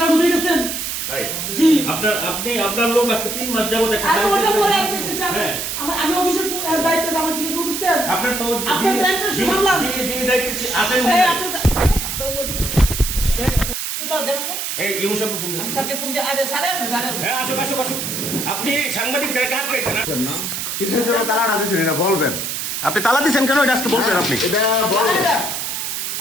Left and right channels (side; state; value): right; noise; hiss, 3 dB below the sound